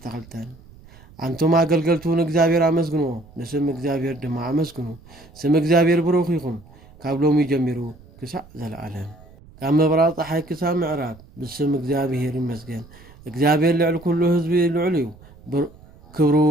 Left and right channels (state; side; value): noise; right; rumble, 23 dB below the sound